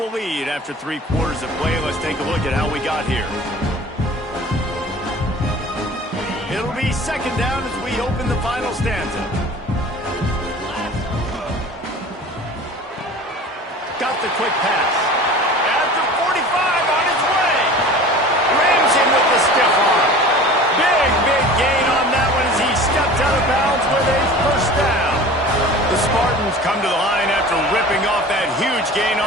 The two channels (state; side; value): normal; both; correlation 0.41